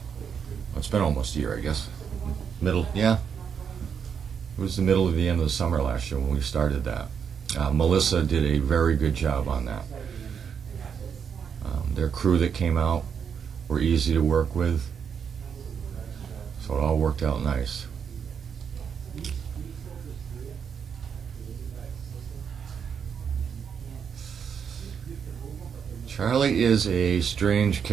Well, it's been almost a year, I guess. Yeah. It was the middle of the end of the summer last year when we started that. Melissa did a very good job on that. Their crew that came out were easy to work with. So it all worked out nice. Charlie is a strange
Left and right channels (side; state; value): left; quieter; 7.2 dB